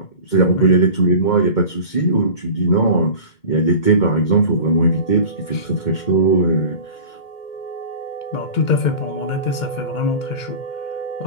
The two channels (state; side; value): late; right; 2.2 ms